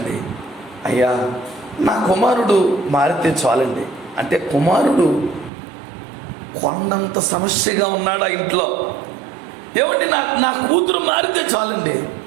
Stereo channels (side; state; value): left; drops out; at 5.5 s